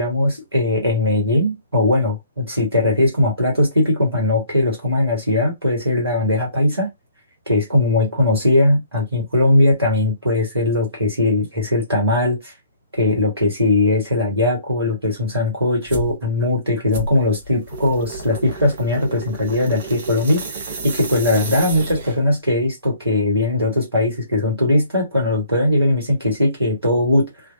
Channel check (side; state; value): both; inverted; correlation -0.57